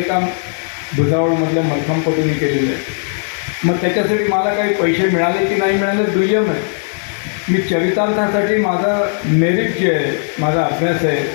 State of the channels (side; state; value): right; silent; digital silence